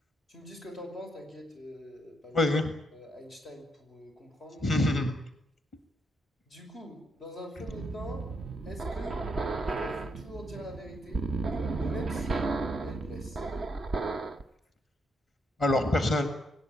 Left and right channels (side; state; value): both; normal; correlation 0.77